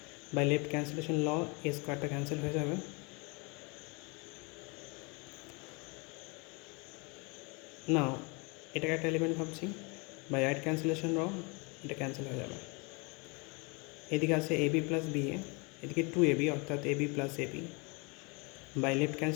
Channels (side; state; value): right; quieter; 30.3 dB